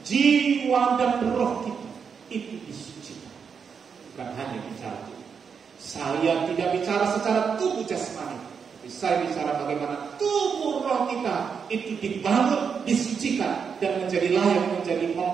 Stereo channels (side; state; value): left; quieter; 6.4 dB